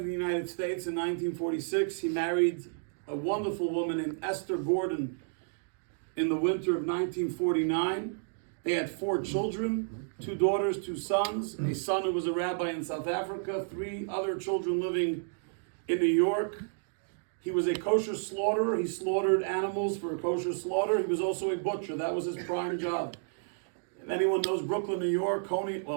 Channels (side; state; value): left; silent; digital silence